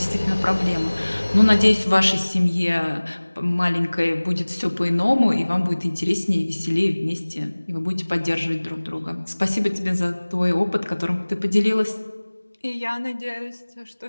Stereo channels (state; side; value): inverted; both; correlation -1.00